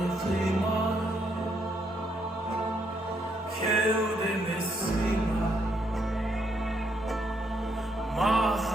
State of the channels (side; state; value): both; normal; correlation 0.74